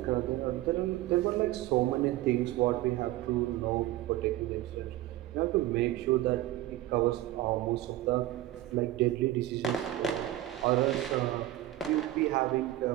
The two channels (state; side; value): quieter; left; 15.2 dB